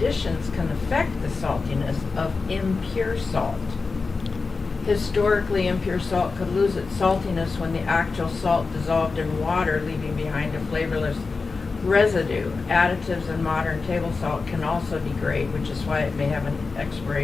can affect the saltiness of impure salt. Historically, impure salt could lose its saltiness when the actual salt dissolved in water, leaving behind a flavorless residue. Additives in modern table salt can also degrade, which is why it may have an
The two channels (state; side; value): quieter; right; 4.3 dB